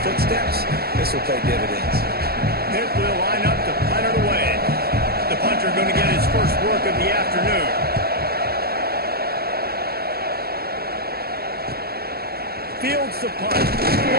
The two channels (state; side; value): late; left; 0.45 ms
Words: footsteps, this will pay dividends. Pitt will line up to punt it away. The punter going to get his first work of the afternoon. Fields the punt.